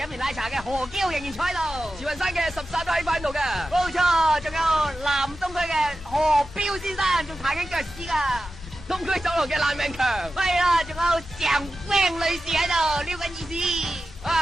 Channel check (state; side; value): normal; both; correlation 0.93